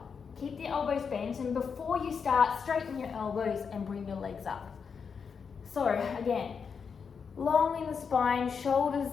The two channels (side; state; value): right; quieter; 6.1 dB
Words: Keep the elbows bent, and before you start, straighten your elbows and bring your legs up. So again, long in the spine,